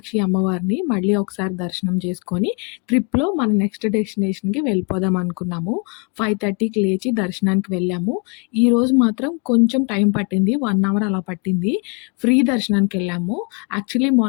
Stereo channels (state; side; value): quieter; right; 34.7 dB